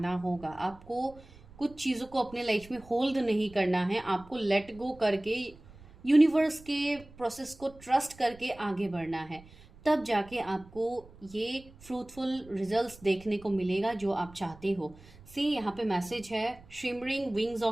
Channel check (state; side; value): noise; right; rumble, 22 dB below the sound